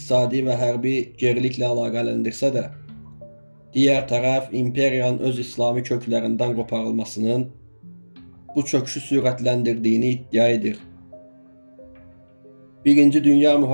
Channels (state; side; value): inverted; both; correlation -1.00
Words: və hərbi geriliklə əlaqələndirsə də, digər tərəf imperiyanın öz İslami köklərindən qoparılmasının bu çöküşü sürətləndirdiyini iddia edir. Birinci Dünya